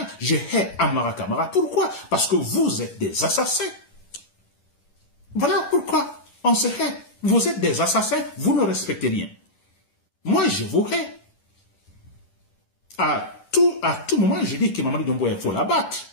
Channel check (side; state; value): right; late; 11 ms